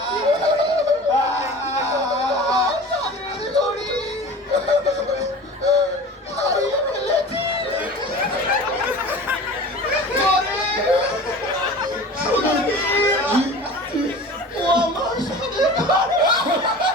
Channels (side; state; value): both; normal; correlation 0.38